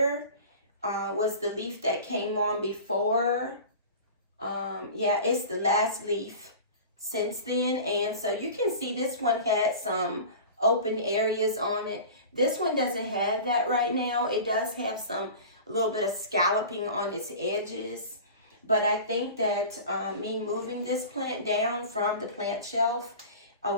was the leaf that came on before. Yeah, it's the last leaf since then. And so you can see this one had some open areas on it. This one doesn't have that right now. It does have a little bit of scalloping on its edges. But I think that me moving this plant down from the plant shelf,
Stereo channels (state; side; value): inverted; both; correlation -0.36